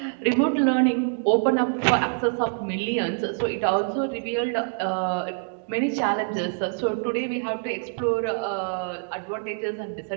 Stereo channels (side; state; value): left; silent; digital silence